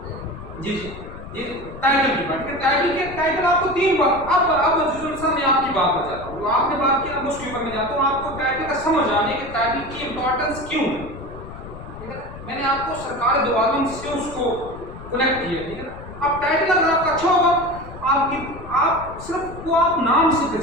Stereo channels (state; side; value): noise; left; rumble, 14 dB below the sound